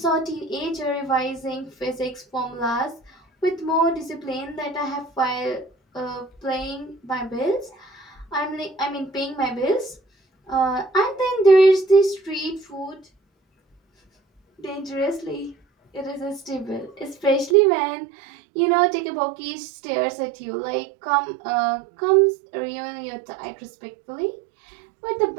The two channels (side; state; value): left; drops out; at 17.6 s